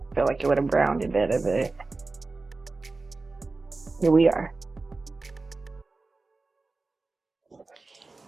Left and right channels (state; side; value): quieter; left; 3.6 dB